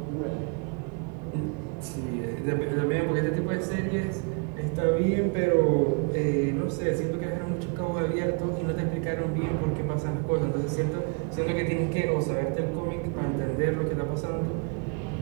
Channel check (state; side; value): quieter; left; 34.5 dB